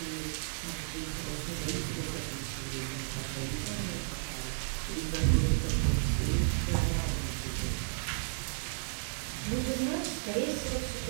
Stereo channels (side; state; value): left; silent; digital silence